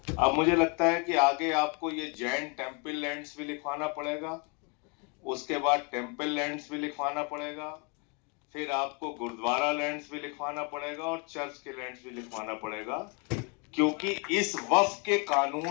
अब मुझे लगता है कि आगे आपको ये जैन टेम्पल लैंड्स भी लिखवाना पड़ेगा, उसके बाद टेम्पल लैंड्स भी लिखवाना पड़ेगा, फिर आपको गुरुद्वारा लैंड्स भी लिखवाना पड़ेगा और चर्च के लैंड्स भी लिखवाना पड़ेगा, क्योंकि इस वक्फ के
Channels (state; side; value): quieter; right; 34.0 dB